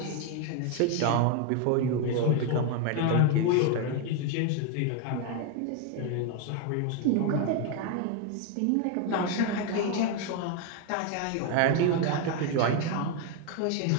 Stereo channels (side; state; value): both; different; correlation 0.01